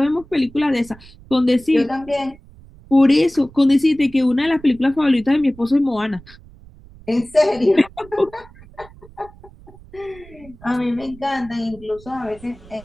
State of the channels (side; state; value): right; noise; rumble, 22 dB below the sound